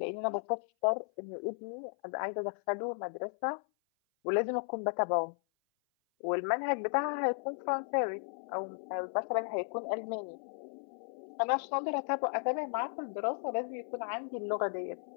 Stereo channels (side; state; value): right; silent; 54 dB below the other